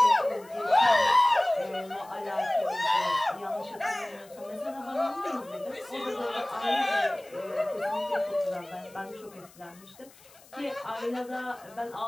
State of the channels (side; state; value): left; noise; hiss, 25 dB below the sound